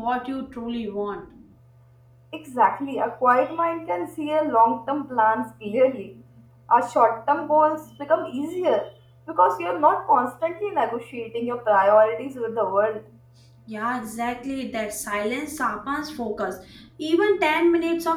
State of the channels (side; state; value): both; identical; correlation 1.00